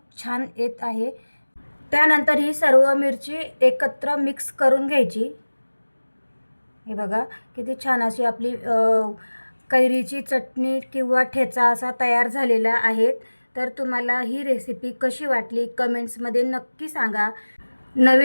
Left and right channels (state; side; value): inverted; both; correlation -1.00